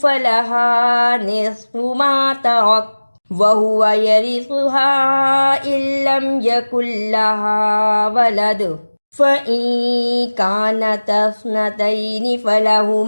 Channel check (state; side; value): inverted; both; correlation -1.00